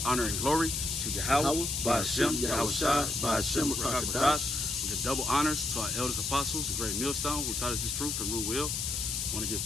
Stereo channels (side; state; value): left; noise; hiss, 1 dB below the sound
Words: honor, and glory to Yahweh, by Hashem, Yahweh Shai, by Hashem, Rakakadash. We give double honors to our elders apostles of Great Millstone, who taught us this truth and rule will. I want to give